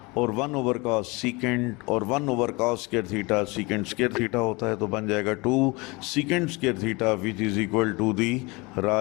और 1 ओवर कॉस सीकेंट और 1 over cos square theta secant square theta होता है, तो बन जाएगा 2 secant square theta which is equal to the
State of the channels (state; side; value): quieter; right; 25.9 dB